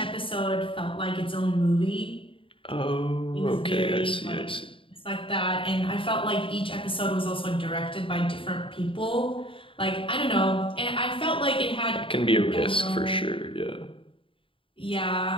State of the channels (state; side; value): late; right; 0.25 ms